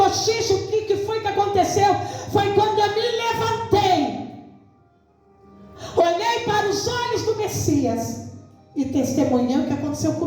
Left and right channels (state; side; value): identical; both; correlation 1.00